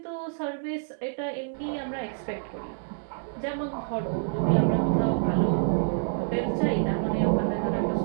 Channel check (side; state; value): left; silent; digital silence